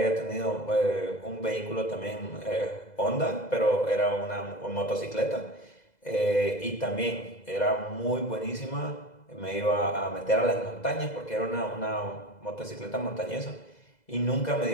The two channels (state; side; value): late; right; 2.0 ms